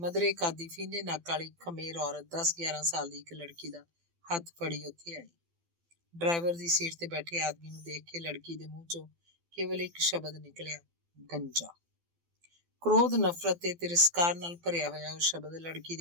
ਕਾਦੀ ਫੀਨੇ ਨੱਕ ਵਾਲੀ ਖਮੇਰ ਔਰਤ 10-11 ਸਾਲ ਦੀ ਇੱਕ ਲੜਕੀ ਦਾ ਹੱਥ ਫੜੀ ਉੱਥੇ ਆਈ। ਡਰਾਈਵਰ ਦੀ ਸੀਟ ਤੇ ਬੈਠੇ ਆਦਮੀ ਨੂੰ ਦੇਖ ਕੇ ਲੜਕੀ ਦੇ ਮੂੰਹ 'ਚੋਂ ਕੇਵਲ ਇੱਕ ਸ਼ਬਦ ਨਿਕਲਿਆ, ਗੰਜਾ। ਕ੍ਰੋਧ, ਨਫ਼ਰਤ ਤੇ ਤਿਰਸਕਾਰ ਨਾਲ ਭਰਿਆ ਹੋਇਆ ਉਹ ਸ਼ਬਦ ਲੜਕੀ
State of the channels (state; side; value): late; left; 12 ms